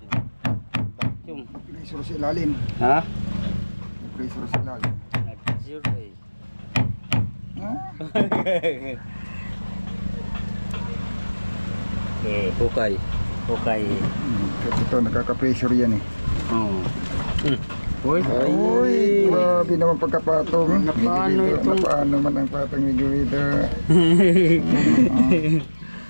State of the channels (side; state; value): both; inverted; correlation -1.00